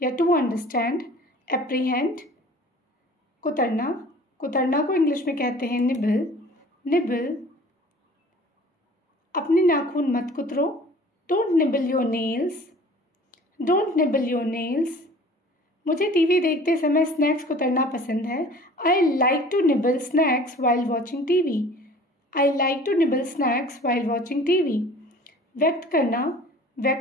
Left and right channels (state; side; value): normal; both; correlation 0.47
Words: या टू अंडरस्टैंड। एप्रीहेंड। कुतरना। कुतरना को इंग्लिश में कहते हैं निबल। निबल। अपने नाखून मत कुतरो। Don't nibble your nails. Don't nibble your nails. मुझे टीवी देखते समय स्नैक्स कुतरना पसंद है। I like to nibble snacks while watching TV. I like to nibble snacks while watching TV. व्यक्त करना।